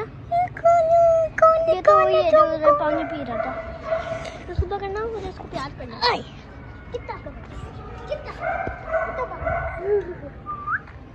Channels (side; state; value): both; identical; correlation 1.00